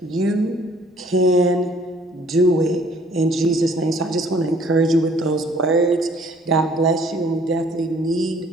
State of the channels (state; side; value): normal; both; correlation 0.58